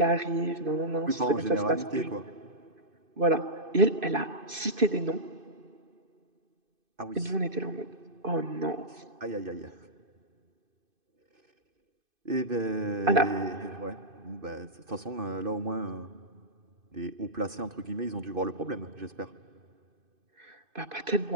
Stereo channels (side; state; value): left; late; 2.5 ms